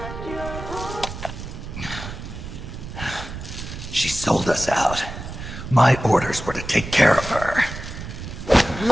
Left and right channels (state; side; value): noise; right; rumble, 9 dB below the sound